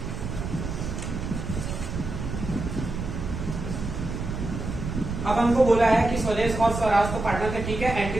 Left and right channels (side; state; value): right; noise; rumble, 5 dB below the sound